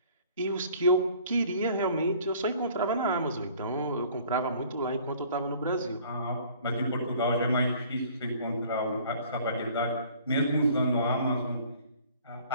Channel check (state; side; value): inverted; both; correlation -0.52